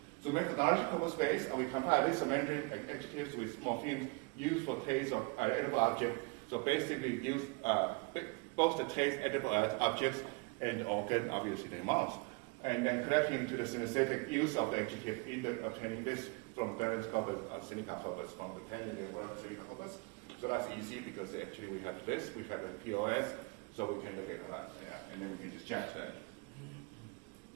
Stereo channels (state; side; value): quieter; left; 29.8 dB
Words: So methodological space, and we compare this Mandarin adjectives with morphemes used for taste of edible object. So basically use both the taste edible objects and organ, obviously the mouth. And then connecting to the synesthetic use of the adjective, either obtaining this from Darren's corpus or Seneca corpus, from the Canadian word Seneca corpus. So that's easy because actually we have this, we have the POS, so we can look at that, and then we can just judge that.